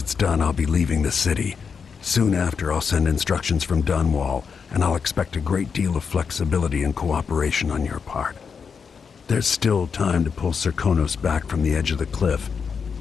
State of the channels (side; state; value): right; quieter; 6.1 dB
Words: done, I'll be leaving the city. Soon after, I'll send instructions from Dunwall, and I'll expect a great deal of flexibility and cooperation on your part. There's still time to pull Serkonos back from the edge of the cliff.